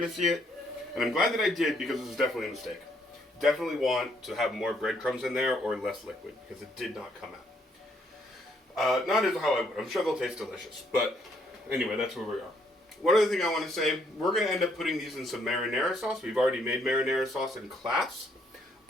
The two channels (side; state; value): both; normal; correlation 0.70